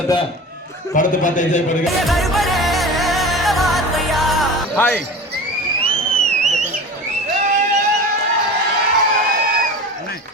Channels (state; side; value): normal; both; correlation 0.34